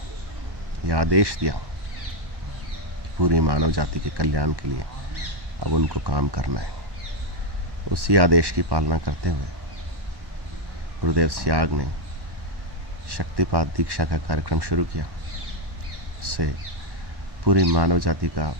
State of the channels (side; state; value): left; late; 1.1 ms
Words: यह आदेश दिया कि पूरी मानव जाति के कल्याण के लिए अब उनको काम करना है। उसी आदेश की पालना करते हुए गुरुदेव सियाग ने शक्तिपात दीक्षा का कार्यक्रम शुरू किया। इससे पूरी मानव जाति का